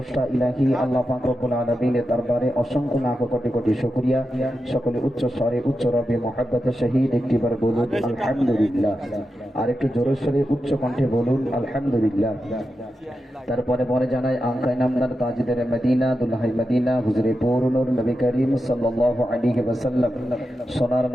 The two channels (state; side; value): normal; both; correlation 0.89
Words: ইলাহি আল্লাহ পাক রব্বুল আলামিনের দরবারে অসংখ্য লাখ কোটি কোটি শুকরিয়া। সকলে উচ্চ স্বরে উচ্চ রবে মহব্বতের সহিত একটিবার বলুন আলহামদুলিল্লাহ। আর একটু জোরে সরে উচ্চ কণ্ঠে বলুন আলহামদুলিল্লাহ। তারপরে পরে জানাই আঙ্কাই নামদার তাজদারে মদিনা দুলহাই মদিনা হুজুরে পৌরনুর নবী করিম সাল্লাল্লাহু আলাইহি ওয়াসাল্লাম সোনার